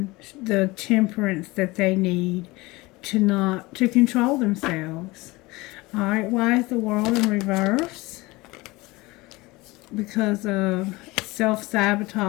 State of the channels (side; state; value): right; quieter; 21.9 dB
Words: the temperance that they need to control themselves. Alright, why is the World in reverse? Because of